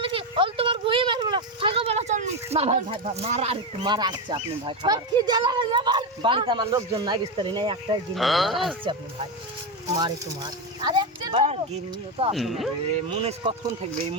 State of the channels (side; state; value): both; normal; correlation 0.11